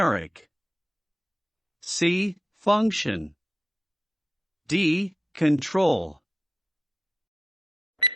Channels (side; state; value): both; normal; correlation 0.88